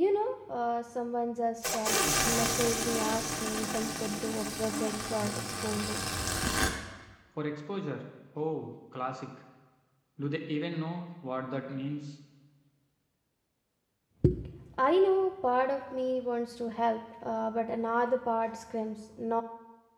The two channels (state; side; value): identical; both; correlation 1.00